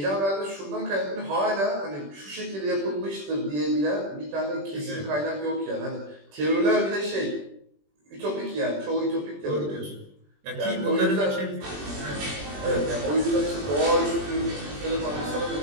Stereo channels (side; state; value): left; late; 21 ms